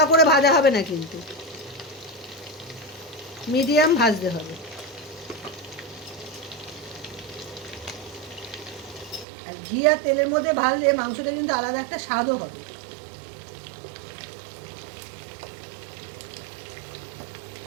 করে ভাজা হবে না, কিন্তু মিডিয়াম ভাজতে হবে। আর ঘি আর তেলের মধ্যে ভাজলে মাংসটা কিন্তু আলাদা একটা স্বাদও হবে।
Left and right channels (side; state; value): left; drops out; at 9.2 s